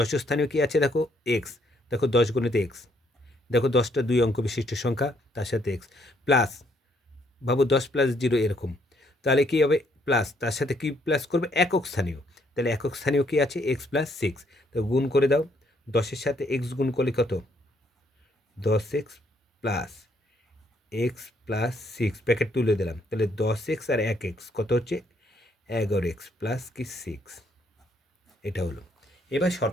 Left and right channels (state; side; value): normal; both; correlation 0.70